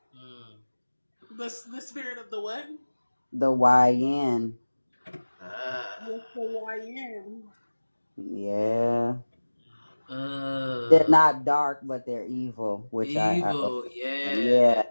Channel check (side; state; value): both; inverted; correlation -1.00